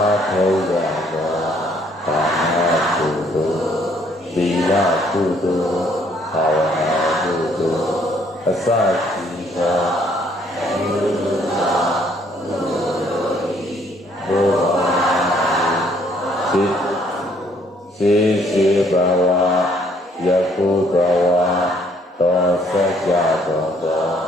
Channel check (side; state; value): both; normal; correlation 0.64